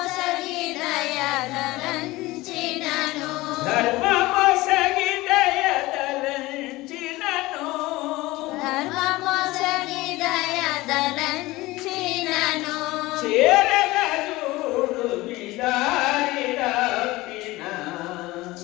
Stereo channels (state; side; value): quieter; right; 19.7 dB